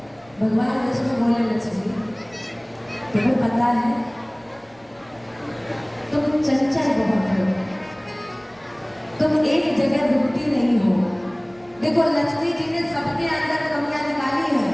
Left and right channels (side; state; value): right; noise; rumble, 30 dB below the sound